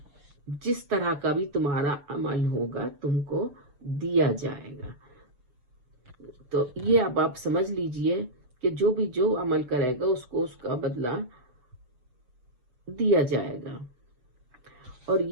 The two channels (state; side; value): late; left; 7.0 ms